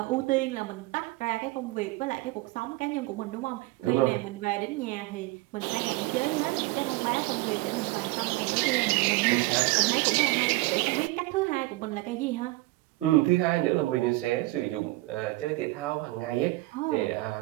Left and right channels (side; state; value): left; quieter; 20.8 dB